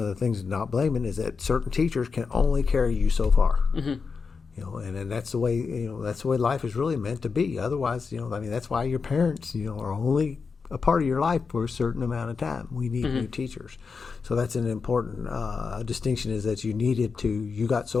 things not blaming is that certain teachers can only carry you so far. And that's the way, that's the way life is really meant to be. Otherwise, that's why your parents, are only a part of your life for a certain amount of time. We need new teachers. So that's an important distinction, is that you got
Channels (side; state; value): right; quieter; 5.1 dB